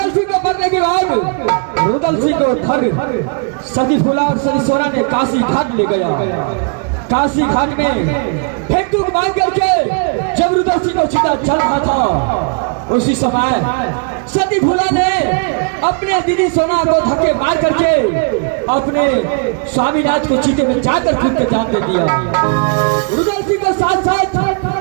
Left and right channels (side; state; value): left; quieter; 37.7 dB